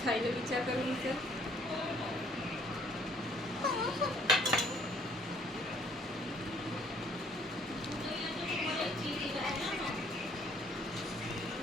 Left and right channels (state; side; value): normal; both; correlation 0.62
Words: खायला विचार करून विचार